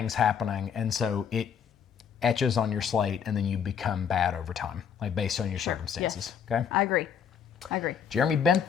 happening, and so it etches on your slate, and then you become bad over time, like based on your circumstances. Yes. Okay. I agree. Jeremy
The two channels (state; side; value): quieter; right; 7.6 dB